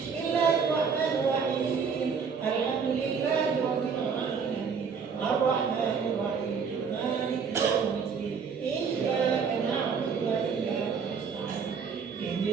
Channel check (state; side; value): quieter; left; 6.0 dB